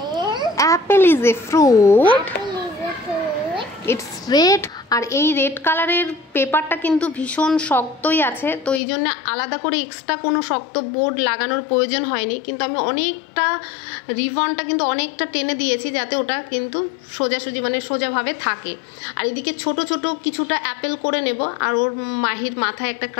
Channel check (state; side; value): drops out; right; at 8.8 s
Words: Apple is a fruit. It's red. আর এই রেড কালারের পেপারটা কিন্তু ভীষণ শক্তই আছে, তো এই জন্য আলাদা করে এক্সট্রা কোনো শক্ত বোর্ড লাগানোর প্রয়োজন হয়নি। কিন্তু আমি অনেকটা রিবনটা কিন্তু অনেকটা টেনে দিয়েছি যাতে ওটা কিন্তু সোজাসুজি মানে সোজাভাবে থাকে। আর এদিকে ছোট ছোট কিছুটা অ্যাপেল করে নেব, আর ওর মাহির মাথায় একটা